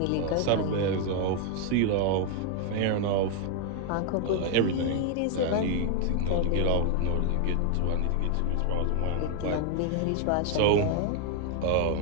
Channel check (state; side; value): different; both; correlation 0.00